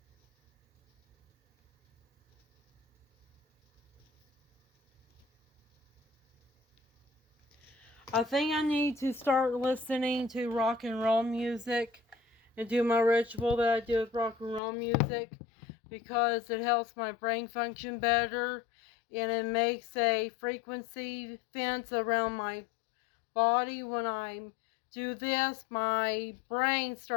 I think I need to start listening to rock and roll music and do my ritual that I do with rock and roll music, because it helps my brain function better and it makes a frequency fence around my body. When I do this, my brain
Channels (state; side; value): drops out; right; at 14.6 s